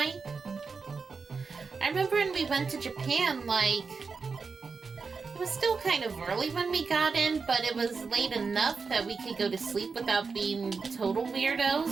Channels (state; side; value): quieter; left; 4.9 dB